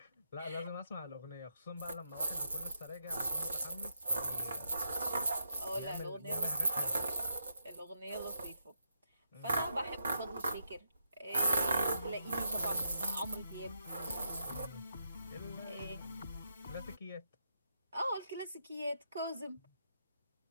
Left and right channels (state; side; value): inverted; both; correlation -0.80